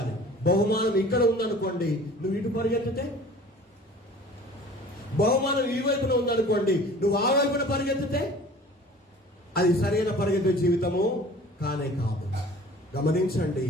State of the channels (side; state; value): both; normal; correlation 0.46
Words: బహుమానం ఇక్కడ ఉందనుకోండి, నువ్వు ఇటు పరిగెత్తితే, బహుమానం ఈ వైపున ఉందనుకోండి, నువ్వు ఆ వైపున పరిగెత్తితే అది సరైన పరిగెత్తే జీవితము కానే కాదు. గమనించండి,